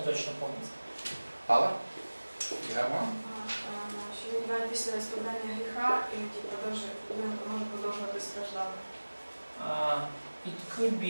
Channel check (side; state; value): both; inverted; correlation -1.00